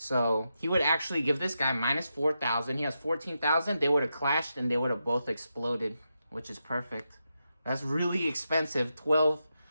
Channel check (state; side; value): inverted; both; correlation -0.87